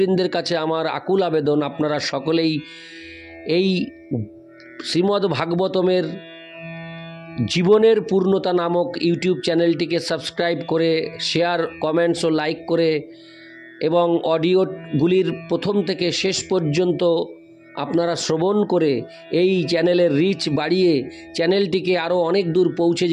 কাছে আমার আকুল আবেদন, আপনারা সকলেই এই শ্রীমদ্ ভাগবতমের জীবনের পূর্ণতা নামক ইউটিউব চ্যানেলটিকে সাবস্ক্রাইব করে, শেয়ার, কমেন্টস ও লাইক করে এবং অডিওগুলির প্রথম থেকে শেষ পর্যন্ত আপনারা শ্রবণ করে এই চ্যানেলের রিচ বাড়িয়ে চ্যানেলটিকে আরও অনেক দূর পৌঁছে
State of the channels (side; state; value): both; identical; correlation 1.00